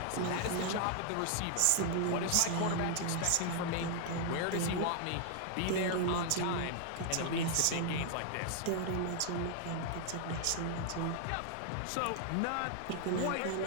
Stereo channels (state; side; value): different; both; correlation 0.00